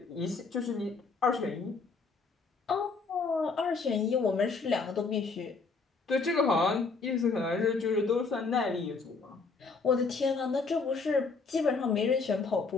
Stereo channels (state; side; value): quieter; right; 4.4 dB